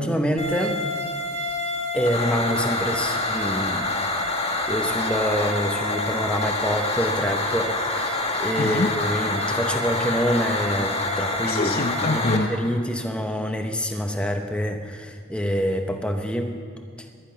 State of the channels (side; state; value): both; normal; correlation 0.37